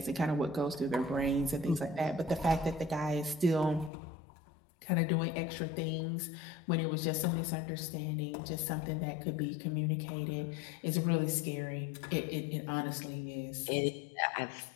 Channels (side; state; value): right; drops out; at 3.9 s